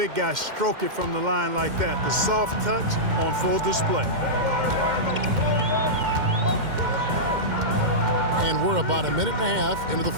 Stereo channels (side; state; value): left; late; 2.1 ms